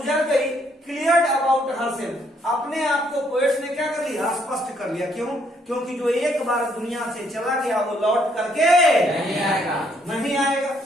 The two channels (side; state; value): both; normal; correlation 0.69